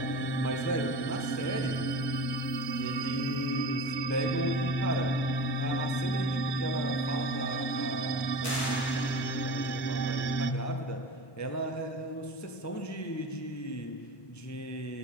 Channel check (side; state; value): right; late; 1.2 ms